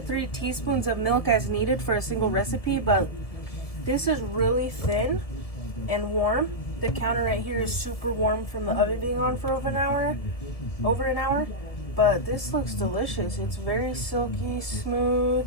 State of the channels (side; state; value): right; late; 1.7 ms